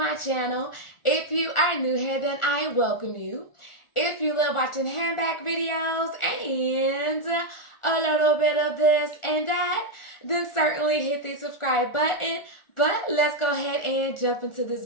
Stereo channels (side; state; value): right; late; 1.4 ms